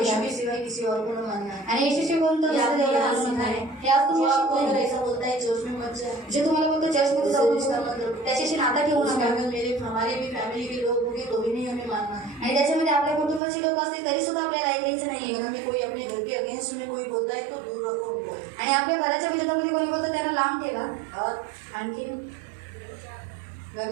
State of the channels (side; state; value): left; drops out; at 13.4 s